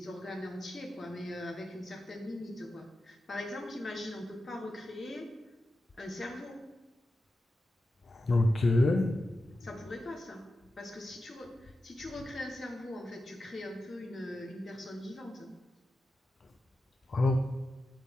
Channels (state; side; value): normal; both; correlation 0.91